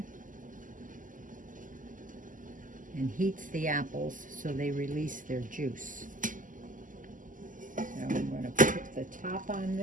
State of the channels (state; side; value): late; left; 0.38 ms